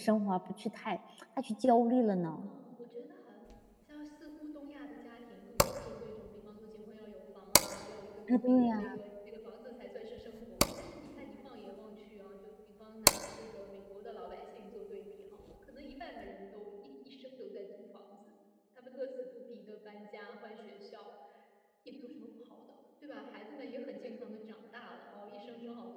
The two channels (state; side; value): identical; both; correlation 1.00